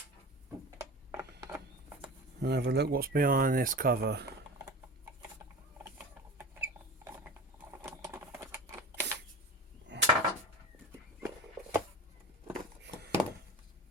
And have a look what's behind this cover.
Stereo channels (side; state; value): both; normal; correlation 0.32